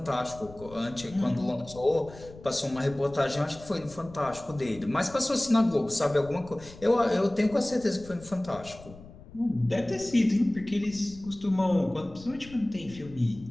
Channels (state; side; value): noise; left; rumble, 19 dB below the sound